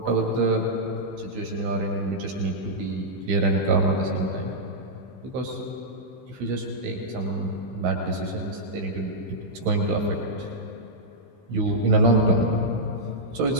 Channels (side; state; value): left; late; 16 ms